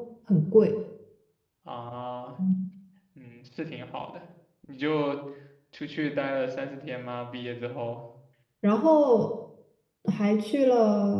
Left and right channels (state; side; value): identical; both; correlation 1.00